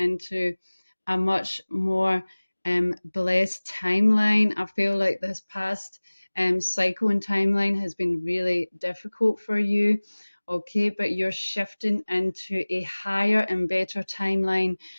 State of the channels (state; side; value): inverted; both; correlation -1.00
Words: a much more blessed timeline. I feel like this past cycle and timeline has been really difficult for you. Okay, but you're shifting into a higher and better timeline